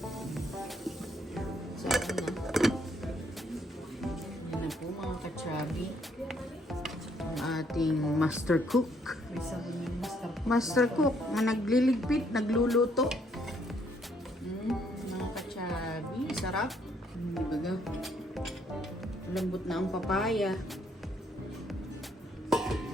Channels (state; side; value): normal; both; correlation 0.69